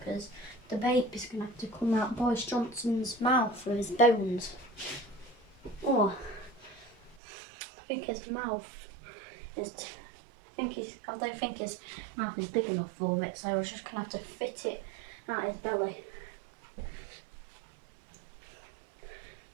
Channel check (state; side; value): drops out; left; at 7.2 s